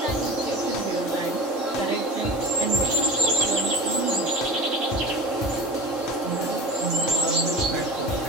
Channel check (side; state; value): both; normal; correlation 0.34